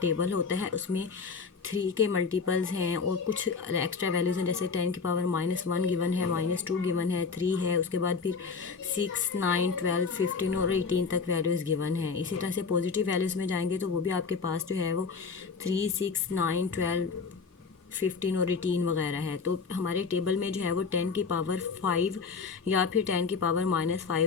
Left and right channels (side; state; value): right; quieter; 5.1 dB